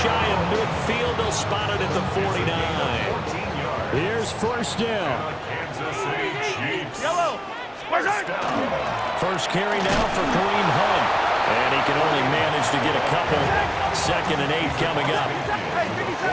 of midfield, they'll spot it at the 49. Here's 1st down. Kansas City Chiefs. Yellow. First carry now for Kareem Hunt. And he can only manage to get a couple. 2nd and 8 coming up.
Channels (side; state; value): both; identical; correlation 1.00